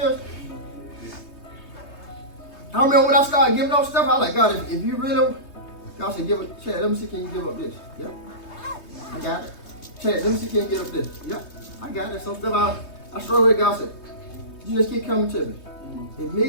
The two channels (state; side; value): late; right; 3.2 ms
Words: I remember when I started giving up stuff, I was like, God, if you really, God said, give it, Chad, let me see, can you give up this? Yep, I got it. Chad, let me see, can you give up this? Yep, I got it. Some stuff I struggle with. God said, you just keep coming to me.